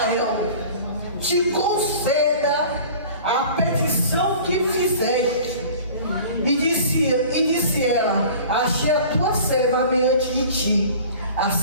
te conceda a petição que fizeste. E disse ela: achei a tua serva mediante de ti.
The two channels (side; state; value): both; inverted; correlation -0.43